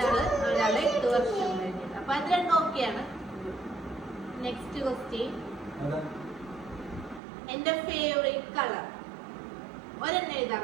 ഒരാള് 8 വർഷം കഴിഞ്ഞിട്ട്. അപ്പൊ അത് രണ്ടും ഓക്കെയാണ്. നെക്സ്റ്റ് ക്വസ്റ്റ്യൻ, എന്റെ ഫേവറേറ്റ് കളർ. ഒരെണ്ണം എഴുതാൻ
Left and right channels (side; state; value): left; drops out; at 7.2 s